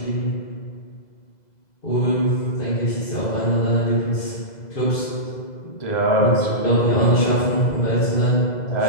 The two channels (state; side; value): late; right; 2.0 ms